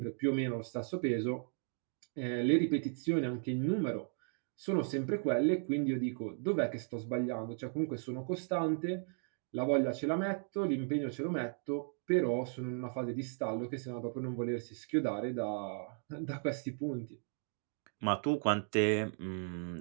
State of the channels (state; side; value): silent; left; 54 dB below the other